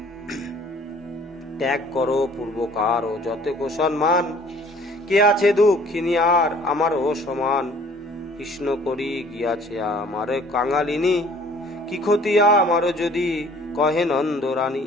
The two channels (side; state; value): both; normal; correlation 0.54